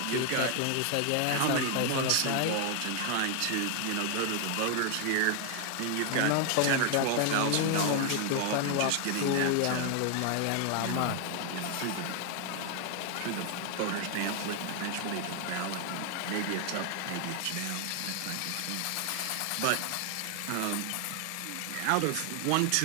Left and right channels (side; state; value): both; different; correlation 0.00